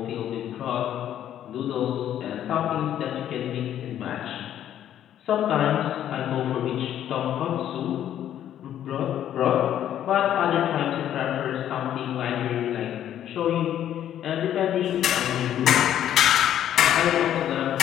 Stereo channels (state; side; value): quieter; right; 10.9 dB